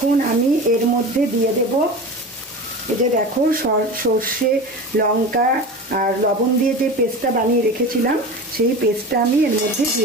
আমি এর মধ্যে দিয়ে দেব, এই যে দেখো সর্ষে লঙ্কা আর লবণ দিয়ে যে পেস্টটা বানিয়ে রেখেছিলাম, সেই পেস্টটা আমি এর মধ্যে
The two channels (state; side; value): normal; both; correlation 0.31